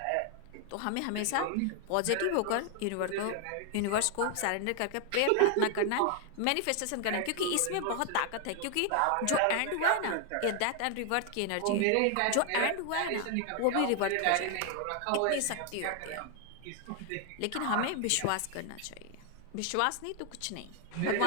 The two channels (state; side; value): different; both; correlation 0.00